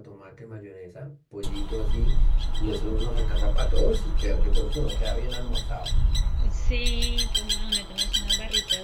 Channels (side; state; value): both; identical; correlation 1.00